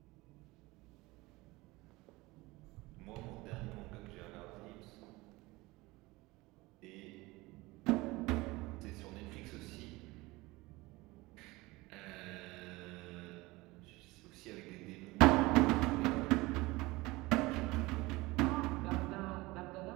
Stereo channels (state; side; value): quieter; left; 21.5 dB